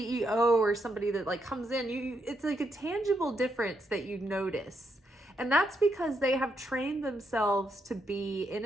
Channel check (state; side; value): normal; both; correlation 0.79